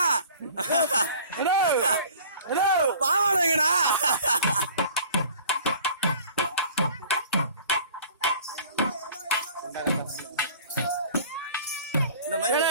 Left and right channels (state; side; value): inverted; both; correlation -0.47